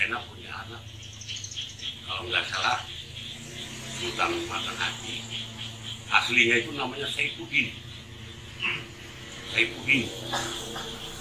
punya anak, kalau nggak salah Sultan Matan Haji, aslinya itu namanya Saifuddin. Saifuddin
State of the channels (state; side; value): identical; both; correlation 1.00